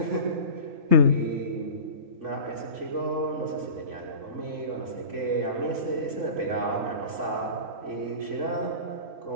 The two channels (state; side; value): late; left; 3.5 ms